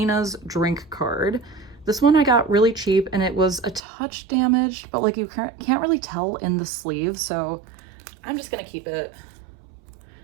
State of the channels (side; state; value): left; drops out; at 3.8 s